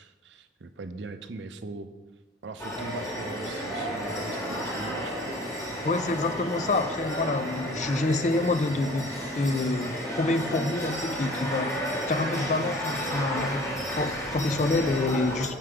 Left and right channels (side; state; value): both; normal; correlation 0.47